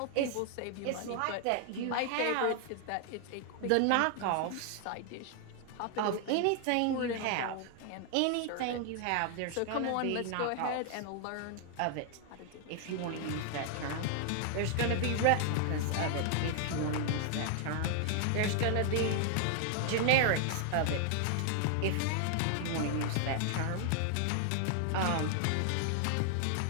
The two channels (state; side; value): different; both; correlation 0.00